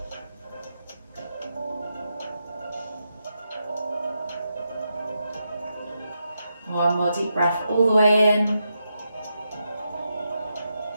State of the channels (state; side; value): inverted; both; correlation -0.84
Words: One more deep breath all the way in.